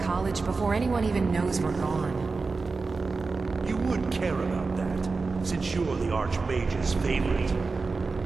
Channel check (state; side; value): quieter; left; 4.1 dB